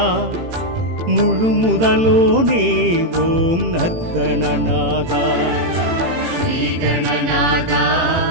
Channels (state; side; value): late; left; 18 ms